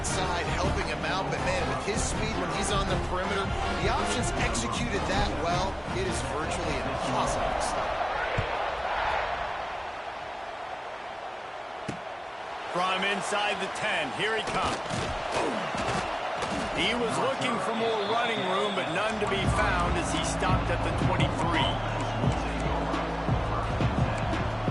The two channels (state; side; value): identical; both; correlation 1.00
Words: helping him out, but, man, with his speed when he's on the perimeter, the options executed that well. It is virtually impossible to stop. From inside the 10, here he comes. He was looking for more running room, but none to be found as he stopped at the 23.